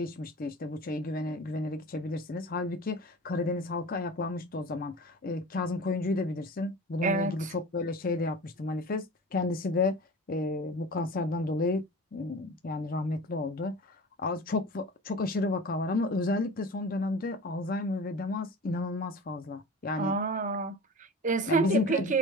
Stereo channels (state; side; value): normal; both; correlation 0.36